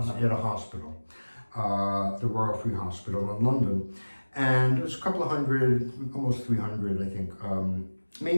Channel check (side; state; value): both; inverted; correlation -1.00